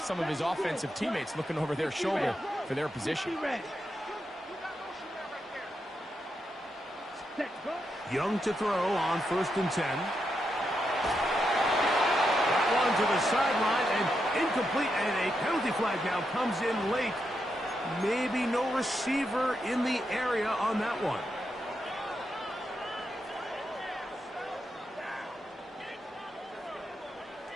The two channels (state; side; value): normal; both; correlation 0.84